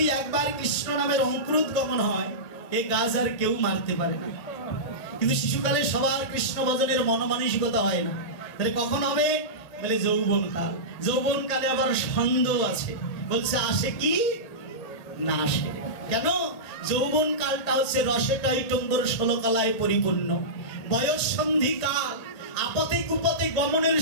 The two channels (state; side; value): late; right; 1.8 ms